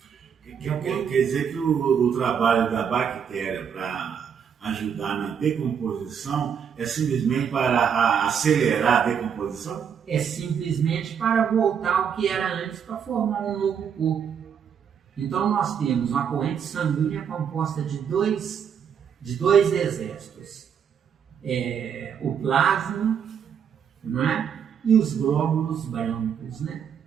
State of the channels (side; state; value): left; quieter; 7.6 dB